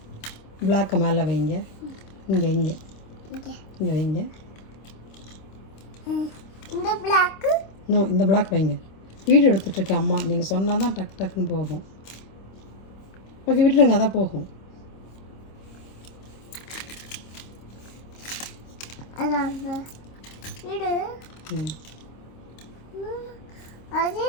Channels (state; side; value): late; right; 26 ms